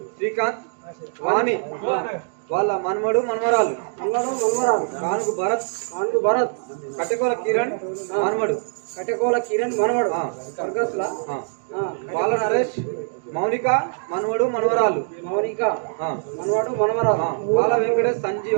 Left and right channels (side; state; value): left; silent; digital silence